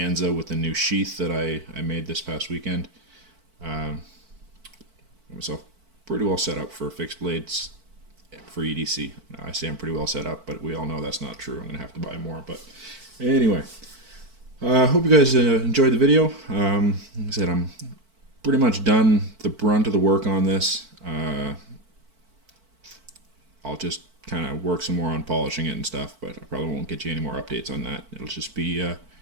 with the new sheath that I made this past weekend, got myself pretty well set up for fixed blades for EDC. I say I'm pretty well set up, but we all know that's not true. I'm going to have to buy more. But anyway, I hope you guys enjoyed the video. Like I said, I'm pretty much done the brunt of the work on this. I'll just kind of work some more on polishing it and stuff, but I probably won't get you any more updates on that. It'll just be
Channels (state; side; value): late; left; 4.5 ms